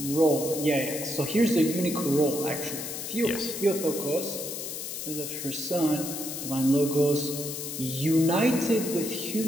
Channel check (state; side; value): noise; left; hiss, 6 dB below the sound